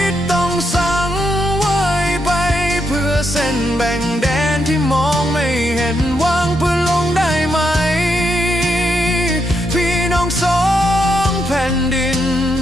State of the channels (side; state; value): both; normal; correlation 0.80